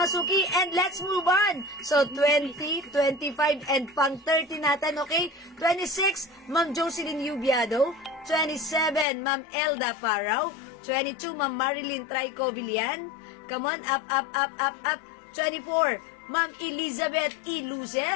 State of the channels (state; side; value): drops out; right; at 9.1 s